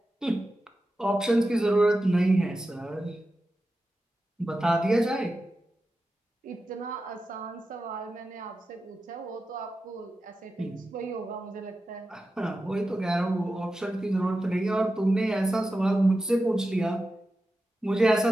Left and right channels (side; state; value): both; normal; correlation 0.92